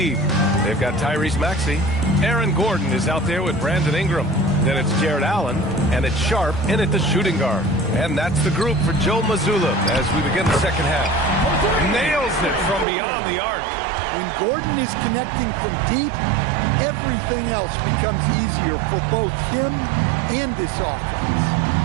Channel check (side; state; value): left; drops out; at 12.9 s